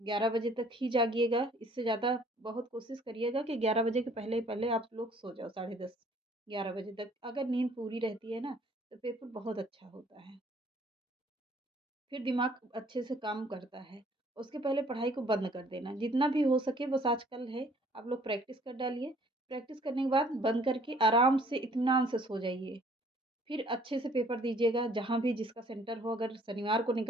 11 बजे तक ही जागिएगा। इससे ज़्यादा बहुत कोशिश करिएगा कि 11 बजे के पहले आप लोग सो जाओ, साढ़े 10 11 बजे तक। अगर नींद पूरी रहती है ना, तो पेपर बहुत अच्छा होता है। फिर दिमाग अच्छे से काम करता है। उसके पहले पढ़ाई को बंद कर देना, जितना भी हो सके। बस आजकल है, आप लोग प्रैक्टिस कर डालिए। प्रैक्टिस करने के बाद बंद करके आराम से इत्मीनान से सो जाइए। फिर अच्छे से पेपर दीजिएगा, जहाँ भी जिसका सेंटर हो। अगर शनिवार को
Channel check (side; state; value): both; normal; correlation 0.58